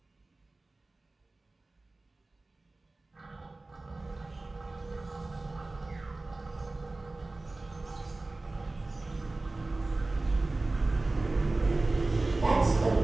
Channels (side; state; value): left; quieter; 3.1 dB